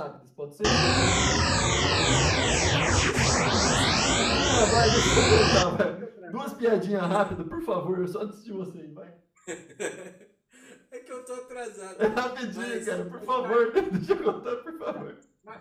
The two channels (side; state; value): both; identical; correlation 1.00